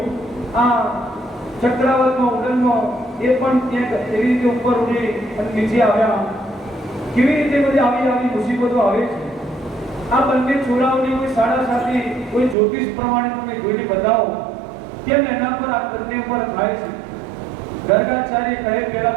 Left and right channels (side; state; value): left; drops out; at 12.6 s